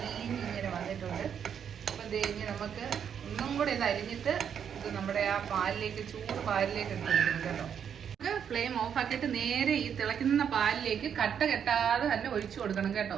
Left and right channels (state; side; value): quieter; left; 8.1 dB